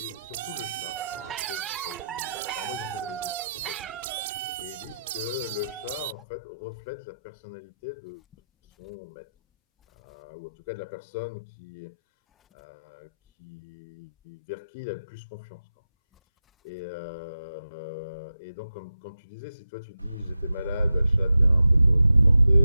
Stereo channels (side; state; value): both; inverted; correlation -0.89